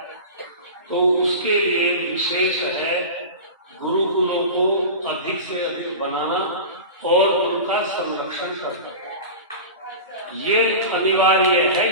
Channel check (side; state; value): both; inverted; correlation -0.31